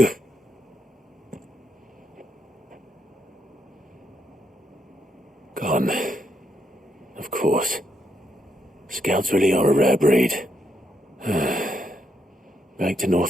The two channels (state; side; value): normal; both; correlation 0.78